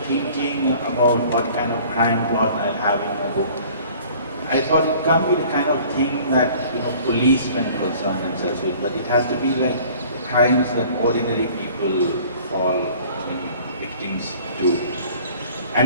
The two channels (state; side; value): inverted; both; correlation -0.50